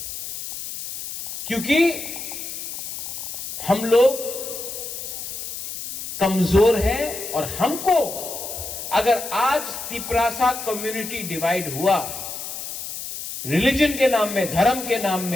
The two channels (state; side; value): noise; left; hiss, 8 dB below the sound